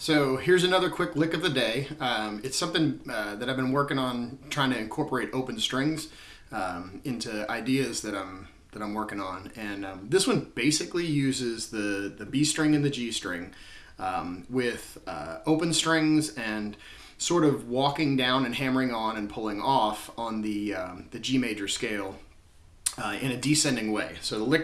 So here's another quick lick of the day. It's something that I've been working on, trying to incorporate open strings into ideas that I'm working on. And this one basically uses the B string and the G string with open strings and sort of walking down and hammering on and pulling off on the G major scale in a descending way. So the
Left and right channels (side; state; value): both; identical; correlation 1.00